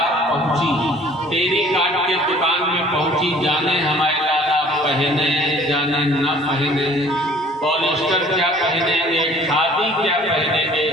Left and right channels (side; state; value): both; normal; correlation 0.53